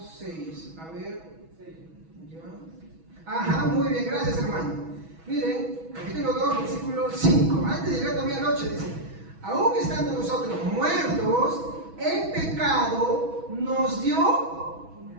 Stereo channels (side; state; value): left; late; 6.2 ms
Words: 6. A ver. ¿Ya? Ajá, muy bien, gracias, hermano. Miren, capítulo 2, versículo 5. Antes de llegar todavía a la 8, dice: aún estando nosotros muertos en pecado, nos dio.